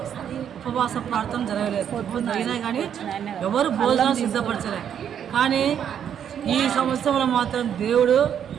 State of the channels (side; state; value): left; quieter; 8.9 dB